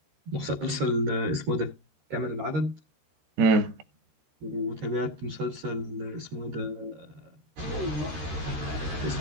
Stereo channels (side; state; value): left; late; 13 ms